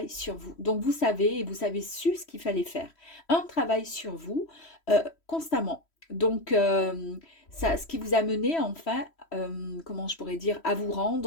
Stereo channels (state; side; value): late; right; 3.1 ms